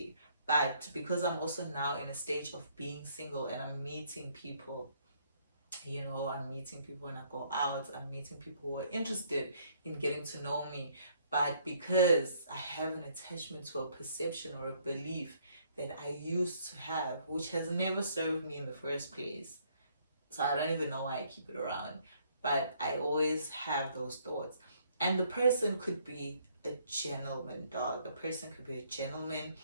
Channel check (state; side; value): inverted; both; correlation -0.66